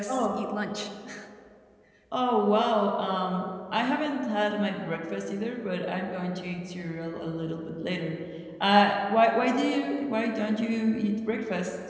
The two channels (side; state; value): both; identical; correlation 1.00